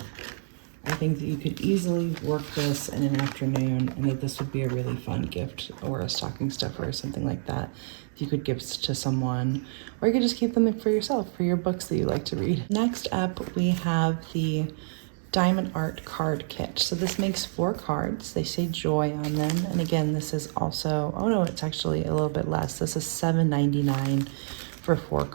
I think that you could easily work this in an afternoon, and that this would be a really fun gift or a stocking stuffer or something like that. You could give to someone, or you could just keep them for yourself, for your books that you like to read. Next up, we have the Diamond Art card kit. So this makes 4 cards. They say joy on them. And again, this is also, oh no, it's actually a little bit less. This is $7.99 for 4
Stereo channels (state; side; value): silent; left; digital silence